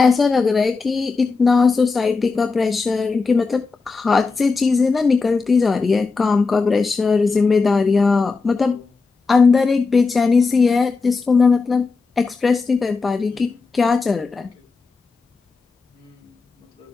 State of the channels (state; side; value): quieter; right; 4.4 dB